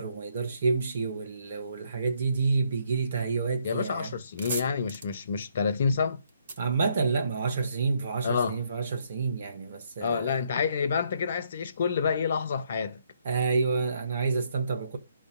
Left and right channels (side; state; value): both; inverted; correlation -0.71